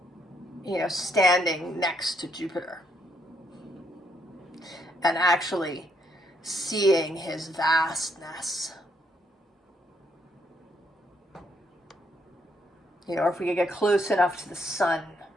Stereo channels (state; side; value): normal; both; correlation 0.73